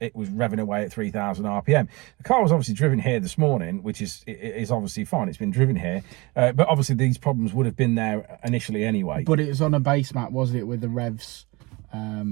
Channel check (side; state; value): left; quieter; 24.8 dB